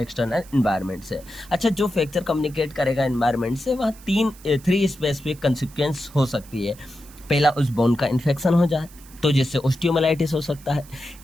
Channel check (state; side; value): noise; right; hiss, 22 dB below the sound